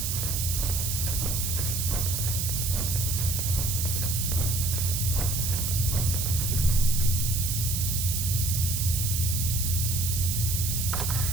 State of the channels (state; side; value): noise; right; hiss, 1 dB below the sound